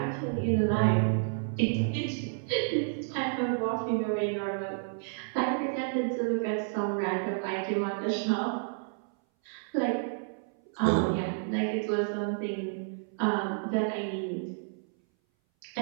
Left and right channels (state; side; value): silent; left; 57 dB below the other